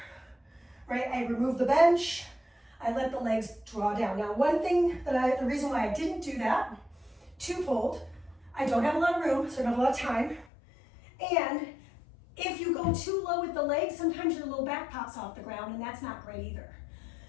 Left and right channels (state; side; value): drops out; right; at 10.5 s